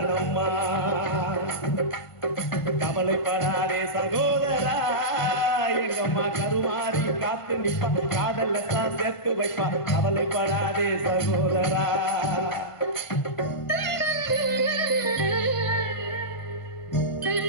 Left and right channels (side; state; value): right; late; 1.5 ms